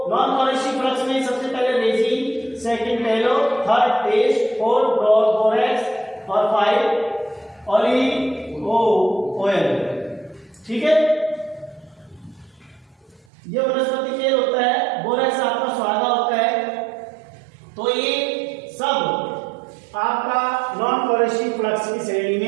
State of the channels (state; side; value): drops out; left; at 13.2 s